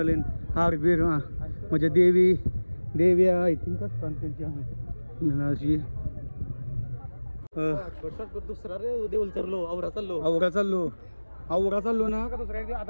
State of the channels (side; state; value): both; inverted; correlation -1.00